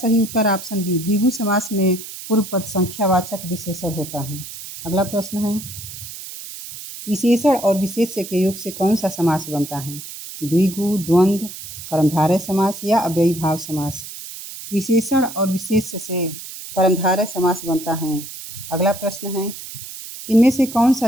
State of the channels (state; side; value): noise; right; hiss, 12 dB below the sound